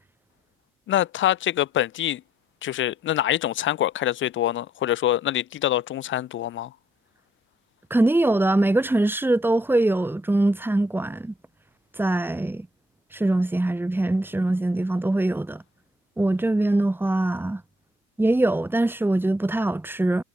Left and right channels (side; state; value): both; normal; correlation 0.70